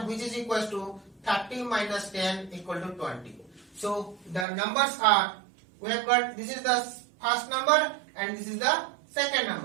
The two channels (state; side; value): drops out; left; at 4.5 s